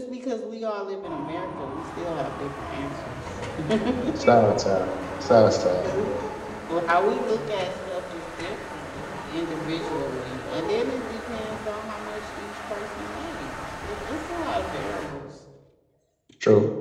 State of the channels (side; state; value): both; identical; correlation 1.00